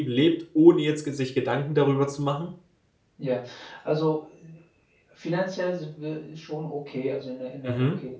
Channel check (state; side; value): identical; both; correlation 1.00